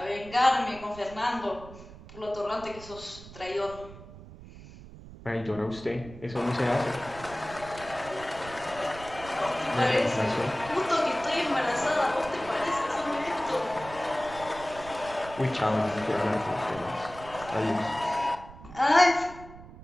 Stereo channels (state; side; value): noise; right; rumble, 16 dB below the sound